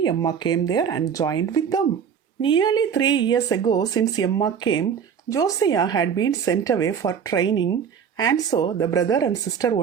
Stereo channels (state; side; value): quieter; left; 7.4 dB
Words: Emma came there and joined with them. Nearly 3 years ago, since Emma came, Josiah had been sent away for training, and so the brother and sister